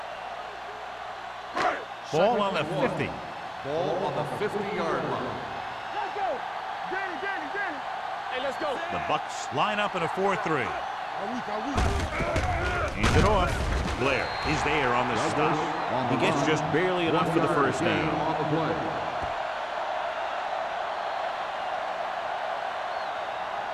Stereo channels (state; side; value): identical; both; correlation 1.00